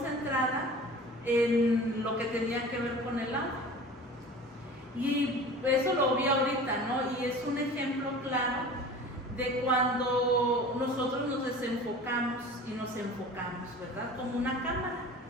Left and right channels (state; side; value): normal; both; correlation 0.40